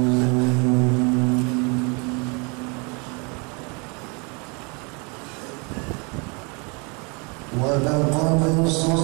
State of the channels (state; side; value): quieter; left; 31.9 dB